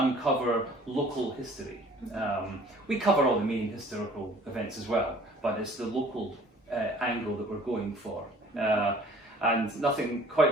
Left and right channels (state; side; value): normal; both; correlation 0.52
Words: local history. We cover all the main historical events as well, but it's the local angle that we're going for. And nothing quite